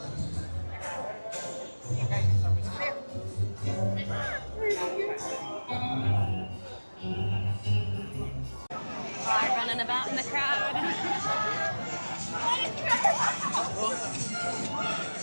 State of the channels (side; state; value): both; inverted; correlation -1.00